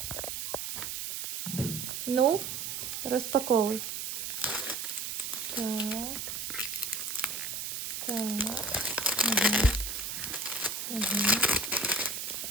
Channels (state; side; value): noise; right; hiss, 4 dB below the sound